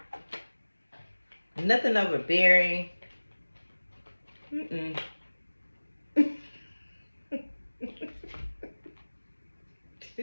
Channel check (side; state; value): both; inverted; correlation -1.00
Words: Nothing overbearing. Mm-mm.